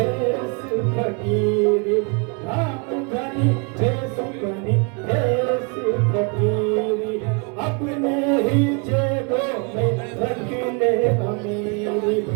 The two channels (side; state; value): left; quieter; 33.7 dB